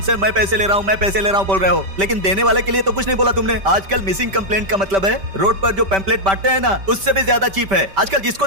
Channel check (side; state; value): left; late; 5.1 ms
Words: से मैं पैसे ले रहा हूँ, मैं पैसे ले रहा हूँ बोल रहे हो, लेकिन देने वाले के लिए तो कुछ नहीं बोला तुमने। आजकल मिसिंग कंप्लेंट का मतलब है रोड पर जो पैम्पलेट बांटते हैं ना, उससे भी ज्यादा चीप है। आजकल